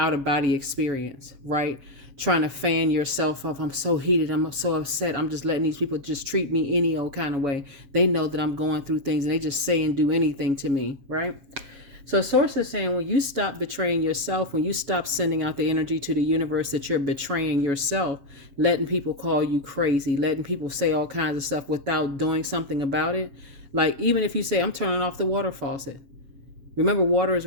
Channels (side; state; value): left; late; 7.1 ms